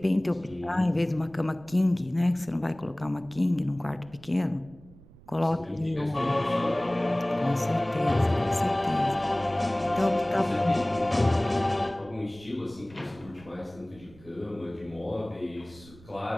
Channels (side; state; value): right; noise; rumble, 22 dB below the sound